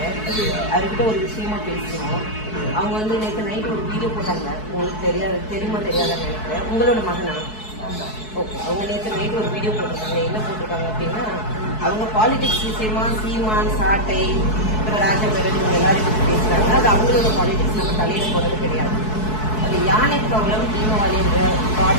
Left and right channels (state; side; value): late; right; 4.6 ms